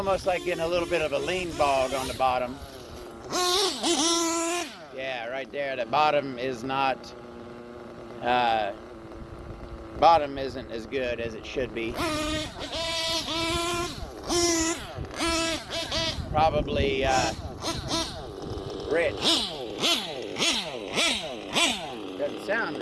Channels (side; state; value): both; identical; correlation 1.00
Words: like getting a little bit of a lean bog on the bottom. Yeah, right there. The bottom is not, bottom isn't as good as it should be. Probably rich. Doesn't sound